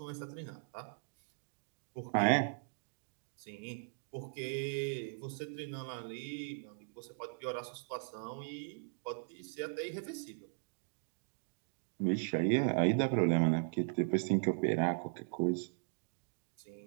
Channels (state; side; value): silent; left; digital silence